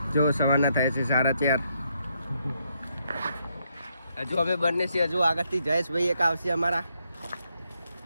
જો સવારના થાય છે 4:30. હજુ અમે બંને છીએ. હજુ આગળથી જયેશભાઈ એક આવશે અમારા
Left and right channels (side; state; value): both; inverted; correlation -0.77